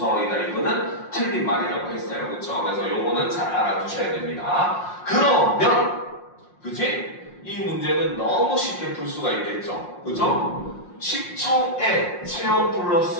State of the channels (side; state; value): right; late; 5.6 ms